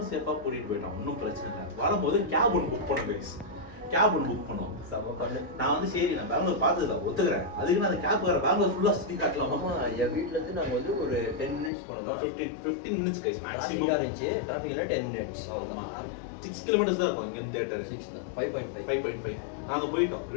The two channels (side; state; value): right; drops out; at 11.7 s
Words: சேஃபாக கூட்டிகிட்டு போயிட்டோம், ஒன்றும் பிரச்சனை இல்லை. வரும்போது கேப் ஒன்று புக் பண்ணோம் கைஸ். கேப் ஒன்று புக் பண்ணோம். நான் வந்து சரி, நான் பெங்களூர் பார்த்ததில்ல, ஒத்துக்கிறேன். அதுக்கு நான் அந்த கேப் வர பெங்களூர் ஃபுல்லாக சுற்றி காட்டலாமா? என் வீட்டிலேருந்து நாங்கள் வந்து ஒரு 10 மினிட்ஸ் போனோம். 15 மினிட்ஸ் கைஸ் மேக்ஸிமம் இருந்துச்சு. டிராஃபிக்ல 10 மினிட்ஸ் அவ்வளோதான். 6 கிலோமீட்டர்ஸ் தான் இருக்கும் இங்கே தேட்டர். 5.5 நாங்கள் போயிட்டோம்.